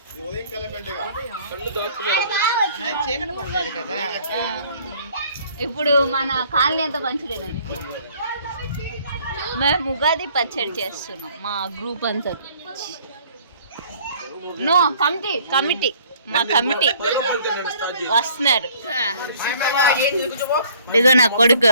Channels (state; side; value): inverted; both; correlation -0.57